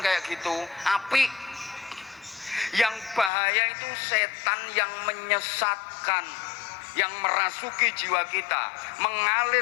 kayak gitu, api. Yang bahaya itu setan yang menyesatkan, yang merasuki jiwa kita,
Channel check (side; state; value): right; drops out; at 3.3 s